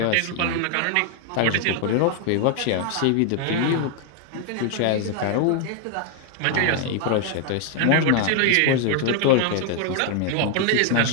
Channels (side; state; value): both; different; correlation 0.00